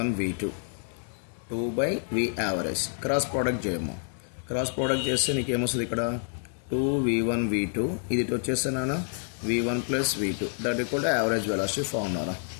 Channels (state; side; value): silent; right; digital silence